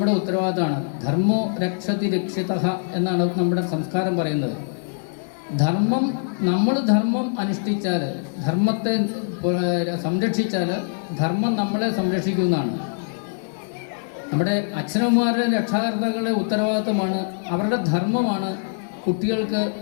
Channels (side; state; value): right; silent; 57 dB below the other